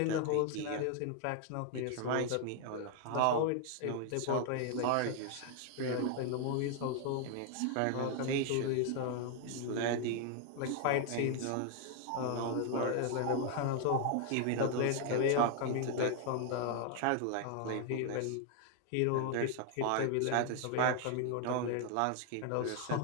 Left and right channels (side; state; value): both; different; correlation 0.00